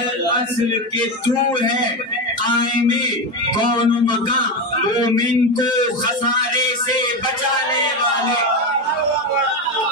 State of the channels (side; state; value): both; normal; correlation 0.15